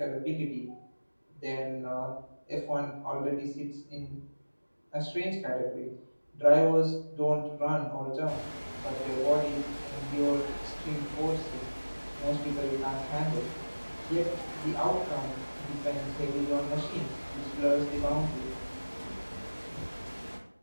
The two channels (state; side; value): inverted; both; correlation -1.00